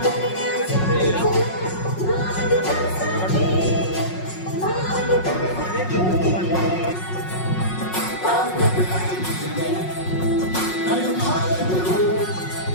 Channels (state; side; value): late; right; 5.5 ms